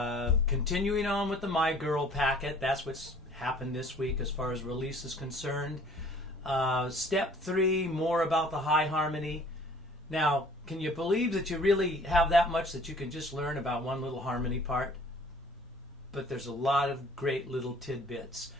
continuing on with the My Girl packet. That's what's happened this week as far as release is concerned. Step 3, more about the high harmony. Now, can you believe that you really have that much that you can just learn about one little harmony part? But there's a lot of great little tidbits.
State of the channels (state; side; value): normal; both; correlation 0.52